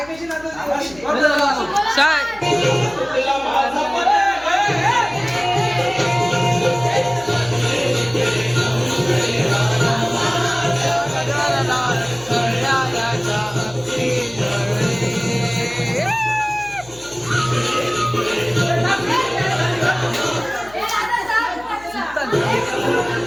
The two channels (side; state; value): left; noise; hum, 22 dB below the sound